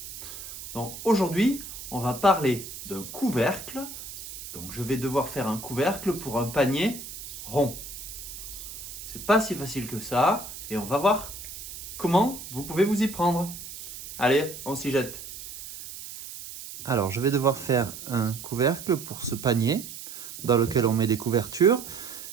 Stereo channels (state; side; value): noise; right; hiss, 11 dB below the sound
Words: Donc aujourd'hui on va parler d'un couvercle, donc je vais devoir faire un couvercle pour un panier rond. C'est pas si facile que ça, et on va voir comment vous pouvez vous y prendre. Allez, on s'y jette. Alors, je vais devoir faire un couvercle pour ce panier dans lequel on met des couvertures,